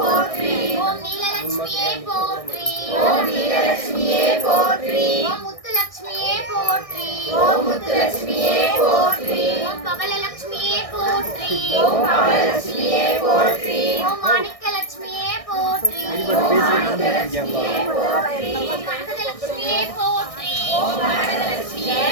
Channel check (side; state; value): right; late; 1.6 ms